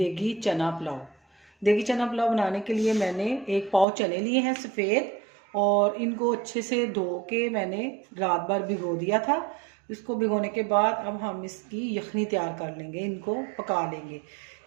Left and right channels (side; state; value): left; drops out; at 3.9 s